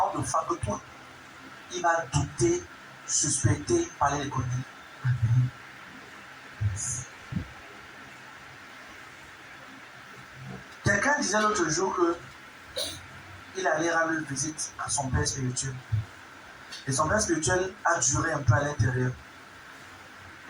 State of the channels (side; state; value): both; identical; correlation 1.00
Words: de foi que toi, il va douter, suspecter, parler les conneries. Quelqu'un disait l'autre jour que il allait rendre visite à son père spirituel. Et son père spirituel a duré un peu à l'intérieur.